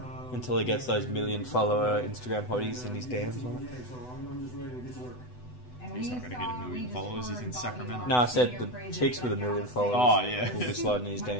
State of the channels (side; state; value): right; late; 8.0 ms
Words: Until he gets those 1 million follower Instagram hotties in his DMs. He's not going to get 1 million followers. He's in Sacramento. No, I said the chicks with 1 million followers. Oh, yeah. Will be sliding his